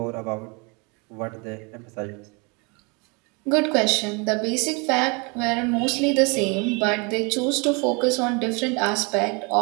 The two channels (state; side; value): quieter; left; 30.8 dB